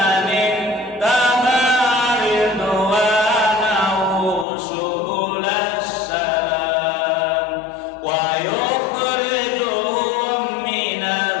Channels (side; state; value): right; drops out; at 4.5 s